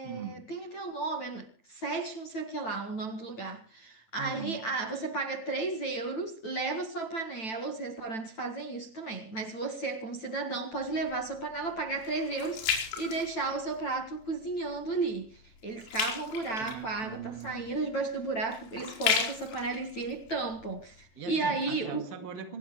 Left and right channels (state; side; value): late; right; 9.0 ms